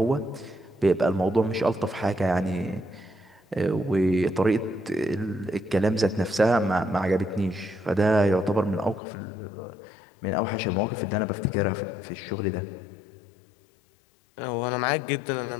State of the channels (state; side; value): drops out; right; at 9.0 s